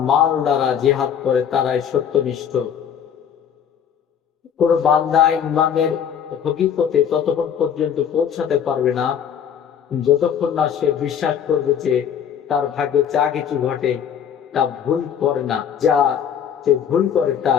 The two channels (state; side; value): quieter; right; 8.3 dB